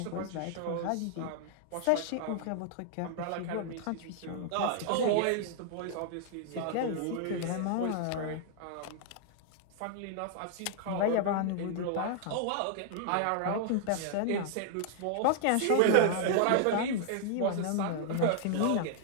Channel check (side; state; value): both; different; correlation -0.01